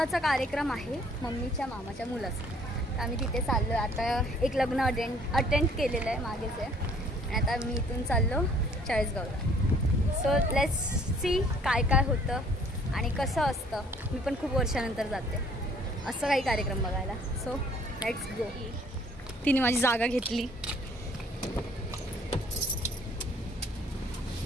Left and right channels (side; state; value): both; normal; correlation 0.58